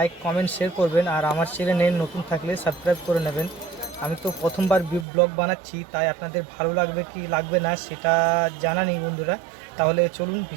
কমেন্ট শেয়ার করবেন, আর আমার চ্যানেলে নতুন থাকলে সাবস্ক্রাইব করে নেবেন। আমি তো প্রথমবার ব্লগ বানাচ্ছি, তাই আপনাদের ভালো লাগবে কি লাগবে না সেটা জানা নেই বন্ধুরা। তাহলে চলুন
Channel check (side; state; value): left; drops out; at 5.1 s